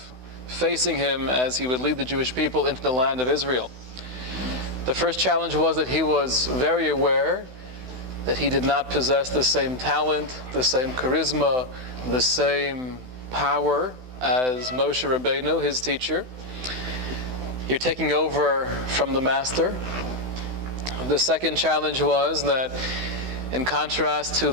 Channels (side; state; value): left; late; 16 ms